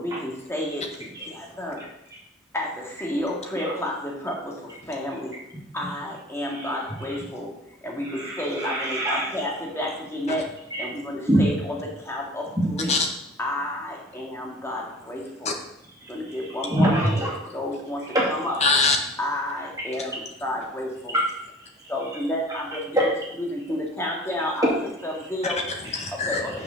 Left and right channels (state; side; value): normal; both; correlation 0.45